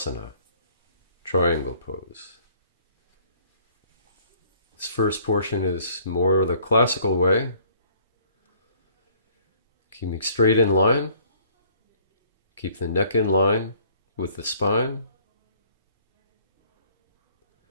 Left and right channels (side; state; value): both; inverted; correlation -0.58